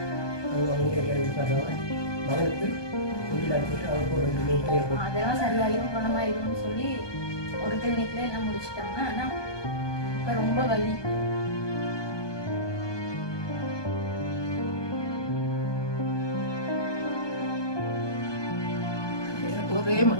மகனுக்கு அதெல்லாம் சரியாயிரும் குணமாயிரும்னு சொல்லி ஒரு கிளினிக்ல எல்லாம் முடிச்சிட்டாங்க. ஆனா இப்ப ரொம்ப வலி. ஒரே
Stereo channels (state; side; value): late; right; 1.2 ms